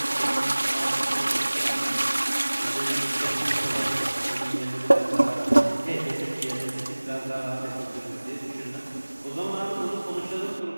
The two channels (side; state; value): both; inverted; correlation -1.00